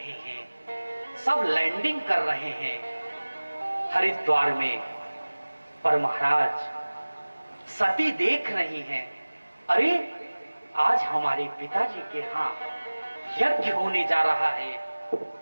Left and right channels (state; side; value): inverted; both; correlation -1.00